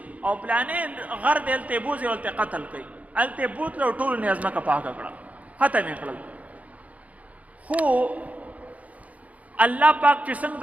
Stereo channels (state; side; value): late; left; 0.070 ms